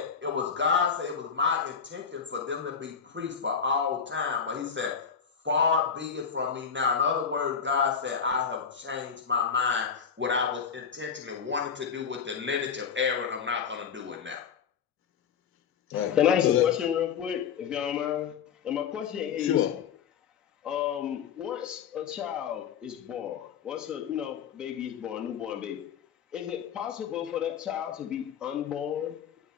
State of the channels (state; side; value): quieter; right; 6.9 dB